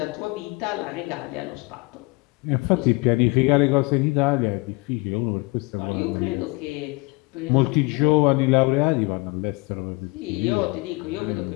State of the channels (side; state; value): right; quieter; 25.7 dB